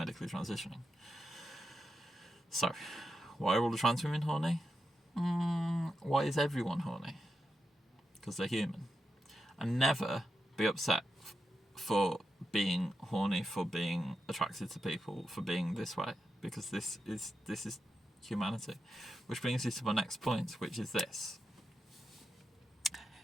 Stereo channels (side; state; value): both; normal; correlation 0.87